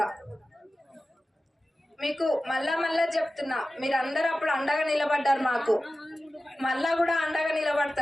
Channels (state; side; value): normal; both; correlation 0.95